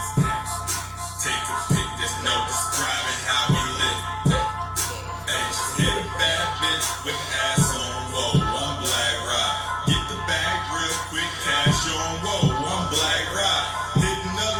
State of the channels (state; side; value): identical; both; correlation 1.00